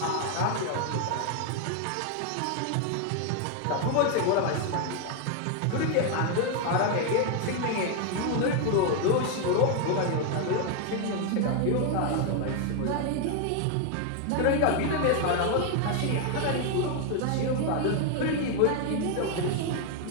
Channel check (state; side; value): different; both; correlation 0.01